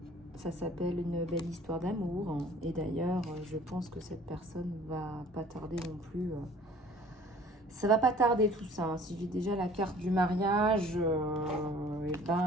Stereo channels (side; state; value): both; normal; correlation 0.51